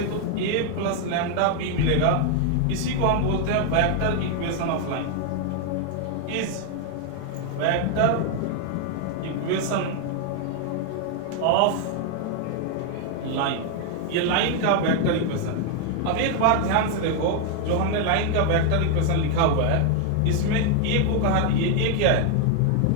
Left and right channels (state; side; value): different; both; correlation 0.00